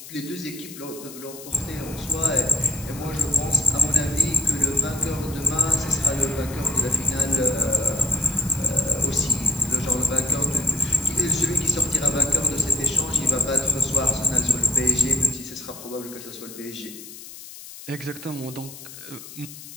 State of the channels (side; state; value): left; noise; hiss, 15 dB below the sound